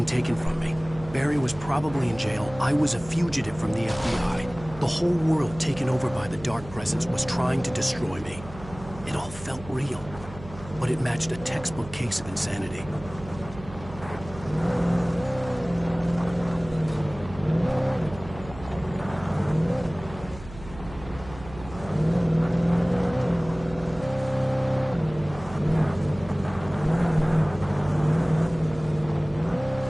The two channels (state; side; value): noise; right; hum, 15 dB below the sound